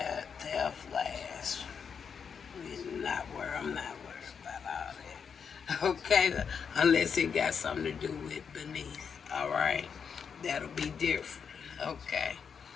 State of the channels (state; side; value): quieter; right; 6.6 dB